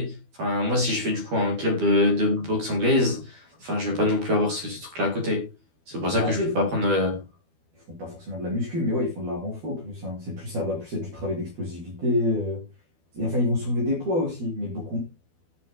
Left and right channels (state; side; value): late; left; 12 ms